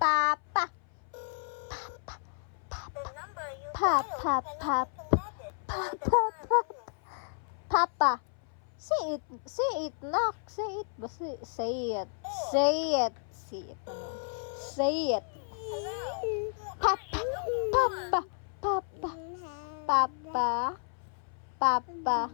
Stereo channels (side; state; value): right; silent; 56 dB below the other